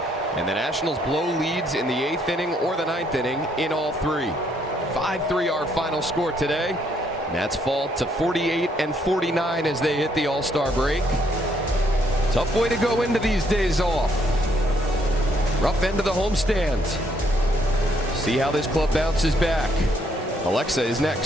and the Nationals blow leads in the 8th inning or the 9th inning in all 3. 5-3 our final score today. Nats fall to 48 and 49 as they hit the All-Star break. Tough way to go into these days off. Rough end of the homestand. See how this club bounces back. Alexa is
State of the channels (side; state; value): both; normal; correlation 0.70